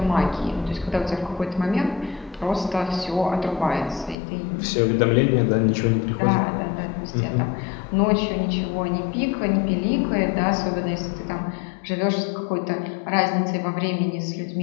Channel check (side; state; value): right; drops out; at 4.2 s